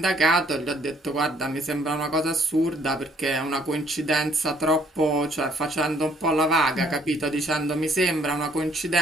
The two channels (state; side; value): normal; both; correlation 0.64